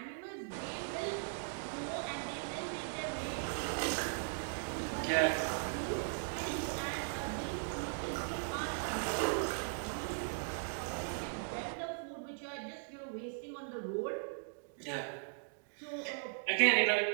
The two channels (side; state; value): left; silent; digital silence